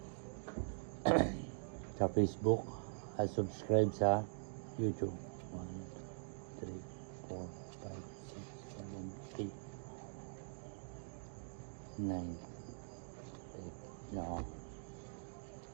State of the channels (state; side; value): silent; left; digital silence